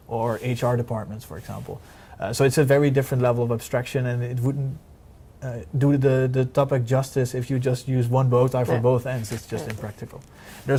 or HR departments, for example. So it's a very different level of abstraction, and it wouldn't do the topic justice if you just use one bow tie for both ends. It's just impractical.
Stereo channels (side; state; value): both; identical; correlation 1.00